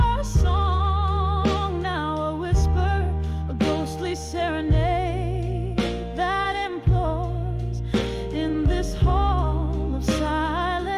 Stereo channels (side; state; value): both; identical; correlation 1.00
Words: song now a whisper, a ghostly serenade that implores. In this hall of